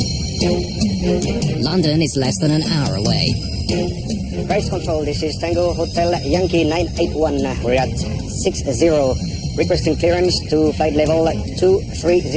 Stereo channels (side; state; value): both; identical; correlation 1.00